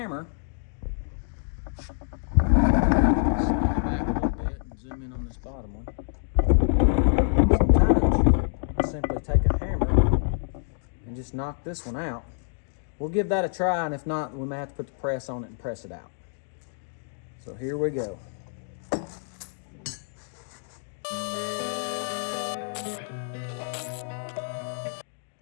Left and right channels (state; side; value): silent; right; digital silence